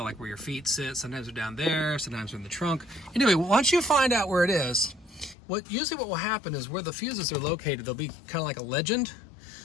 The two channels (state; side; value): drops out; right; at 5.4 s